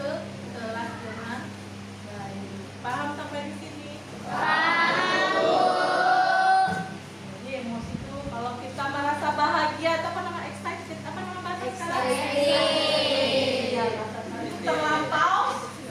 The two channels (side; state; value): both; identical; correlation 1.00